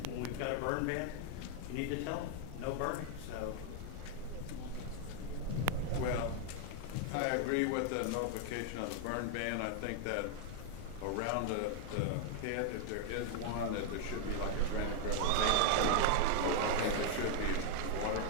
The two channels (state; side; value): different; both; correlation 0.00